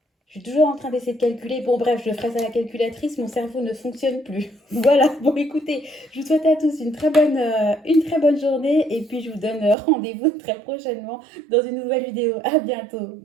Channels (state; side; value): drops out; left; at 9.8 s